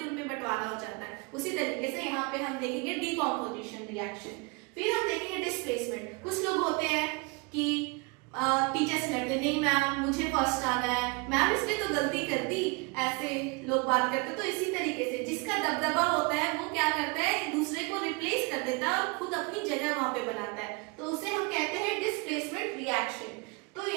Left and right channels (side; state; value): left; quieter; 29.2 dB